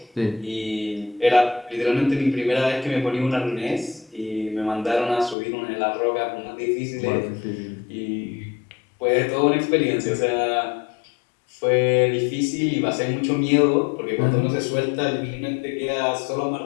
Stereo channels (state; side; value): drops out; right; at 5.4 s